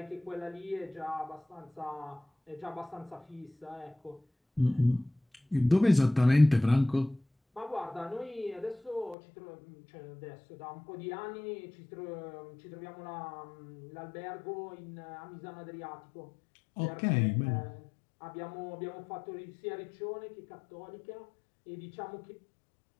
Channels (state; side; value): drops out; right; at 9.2 s